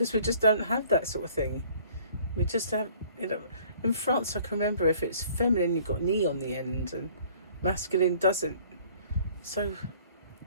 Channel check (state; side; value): inverted; both; correlation -0.55